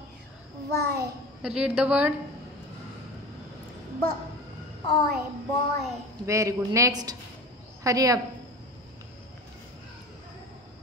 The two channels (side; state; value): both; normal; correlation 0.34